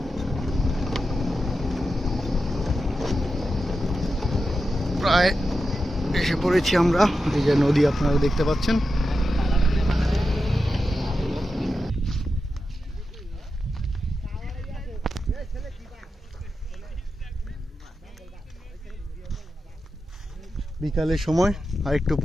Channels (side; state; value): both; normal; correlation 0.90